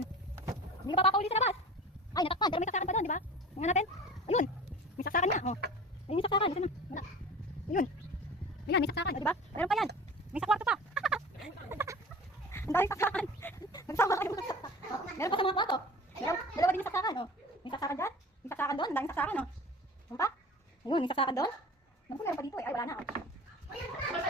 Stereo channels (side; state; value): both; normal; correlation 0.40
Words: Hindi ka papauli sa labas. Ay, natakpan. Pero may saksakan pa doon, di ba? Tingnan natin. Ayun. May saksakan nga. Oh. Ayun yung saksakan. Ito na. Wala. Ayun. Ayan, may saksakan. O, di ba? Meron pa yan. May sa kwarto pa. Ang daming saksakan. Nagsama kayo mga saksakan. Oh, meron pa sa mga kwarto. Dalawa din yung saksakan. Oh. May saksakan dyan. May saksakan doon. Ang daming saksakan. Oh. Ano pa? Ayun, may saksakan doon. Naku, meron pa dito. Ay, wala na. Oh.